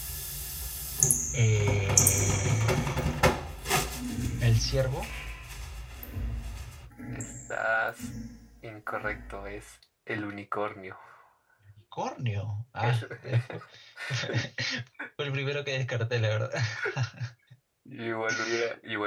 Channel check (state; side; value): identical; both; correlation 1.00